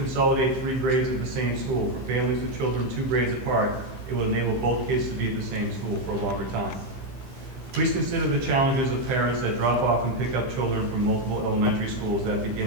3 grades at the same school. For families with children 2 grades apart, it will enable both kids to be at the same school for a longer time. Please consider the challenges of parents that drop off and pick up children from multiple elementary schools that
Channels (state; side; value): late; left; 15 ms